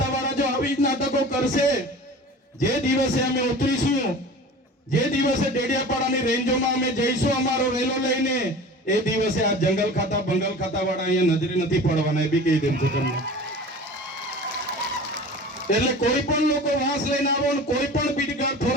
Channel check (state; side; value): normal; both; correlation 0.38